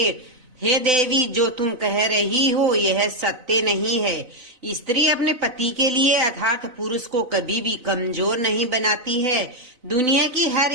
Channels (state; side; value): late; left; 4.0 ms